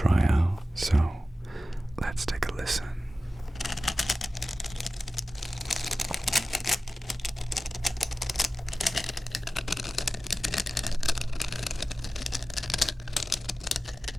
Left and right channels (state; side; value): normal; both; correlation 0.95